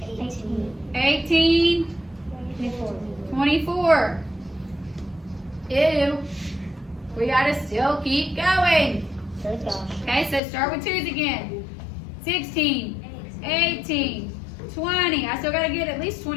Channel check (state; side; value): drops out; right; at 10.4 s